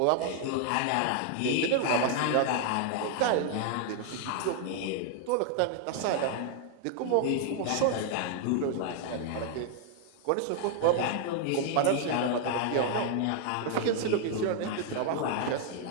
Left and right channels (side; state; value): both; different; correlation 0.00